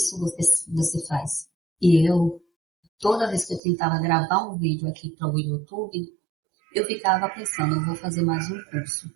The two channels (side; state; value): left; drops out; at 3.6 s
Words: você faz. E eu, toda vez que eu tentava gravar um vídeo aqui para o YouTube, eu ficava pensando: eu vou fazer mais um curso.